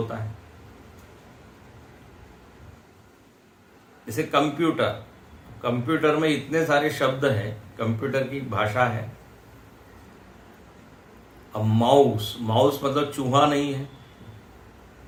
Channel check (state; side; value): identical; both; correlation 1.00